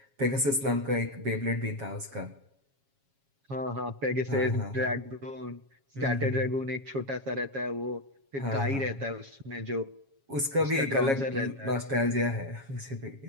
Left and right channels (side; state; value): left; late; 7.3 ms